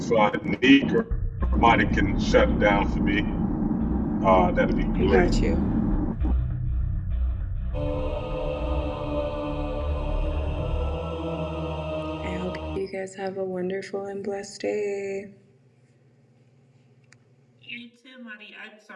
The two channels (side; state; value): both; identical; correlation 1.00